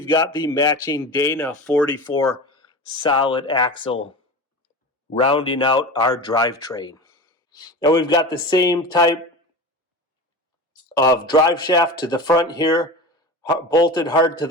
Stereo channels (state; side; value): normal; both; correlation 0.30